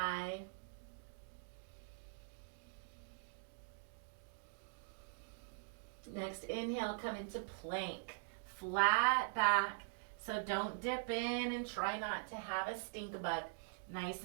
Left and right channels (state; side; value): silent; left; digital silence